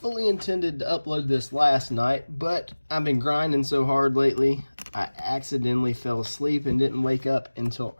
intended to upload this last night, but I've been grinding so hard lately, I accidentally fell asleep and didn't wake up until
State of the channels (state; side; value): inverted; both; correlation -1.00